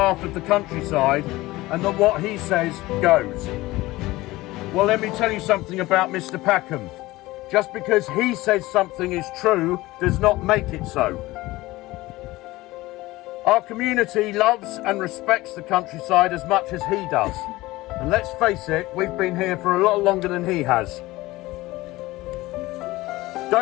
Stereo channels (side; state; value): right; quieter; 19.0 dB